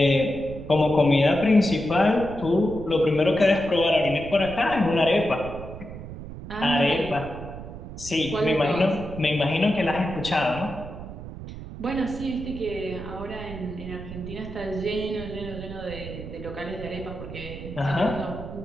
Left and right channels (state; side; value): noise; right; rumble, 11 dB below the sound